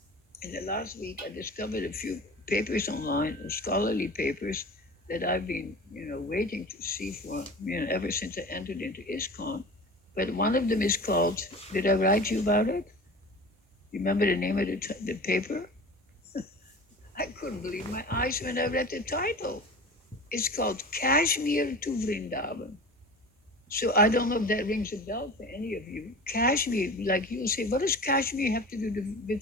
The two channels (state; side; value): normal; both; correlation 0.36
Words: in the last week, I discovered a few papers online, scholarly papers that I've been, waiting to see for, ever since I entered into ISKCON. But one of them is called, did I write you about it? You remember the name of the paper? I couldn't believe my eyes when I read the title. It's called Kashmir to Vrindavan. So I don't know if that rings a bell for any of you. Kashmir, like you'll say, what does Kashmir have to do